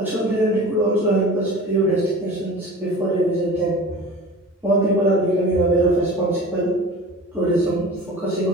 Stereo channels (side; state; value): both; normal; correlation 0.38